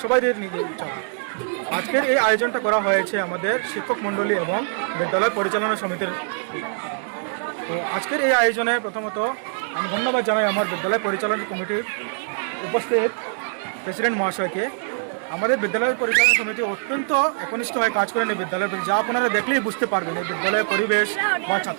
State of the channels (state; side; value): silent; left; 63 dB below the other